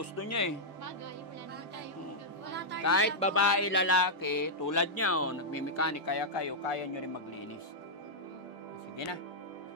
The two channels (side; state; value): both; normal; correlation -0.07